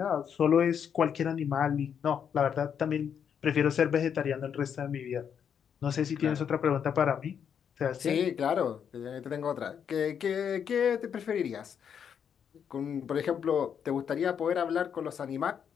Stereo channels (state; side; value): quieter; right; 7.8 dB